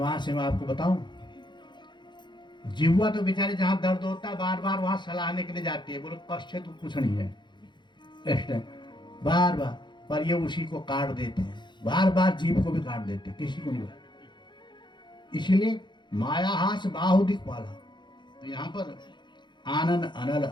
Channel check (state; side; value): late; right; 0.22 ms